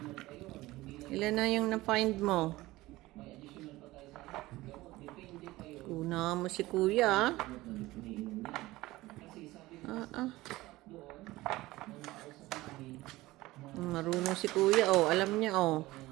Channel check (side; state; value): left; quieter; 18.6 dB